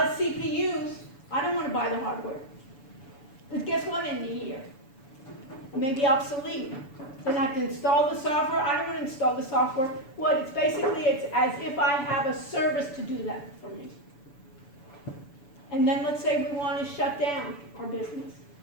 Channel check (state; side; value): late; right; 7.0 ms